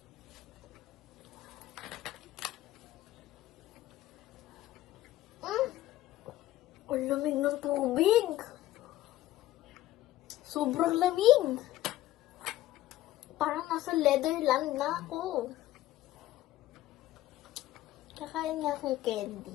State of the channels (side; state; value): right; quieter; 15.1 dB